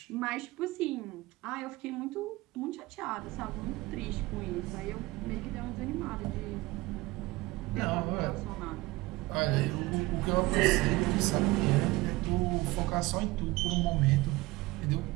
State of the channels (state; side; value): quieter; left; 20.3 dB